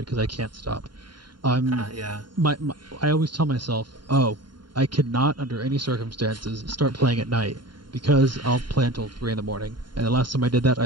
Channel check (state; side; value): late; left; 0.72 ms